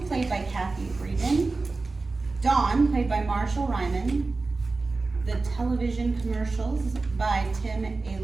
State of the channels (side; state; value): left; quieter; 3.7 dB